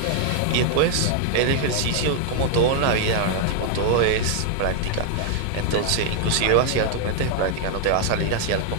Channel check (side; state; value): both; different; correlation 0.00